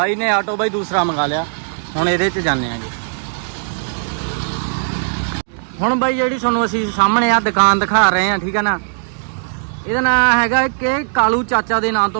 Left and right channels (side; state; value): left; silent; digital silence